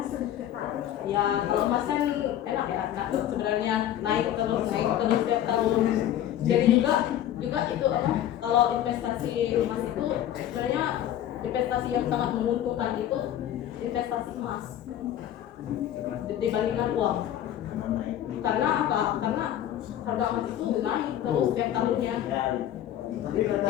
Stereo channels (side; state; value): right; quieter; 11.6 dB